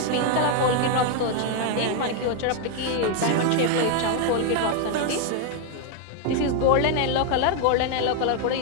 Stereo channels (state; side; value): different; both; correlation 0.01